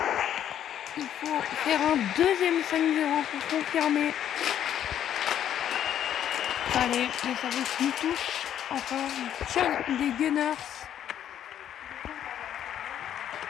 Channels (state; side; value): quieter; right; 10.3 dB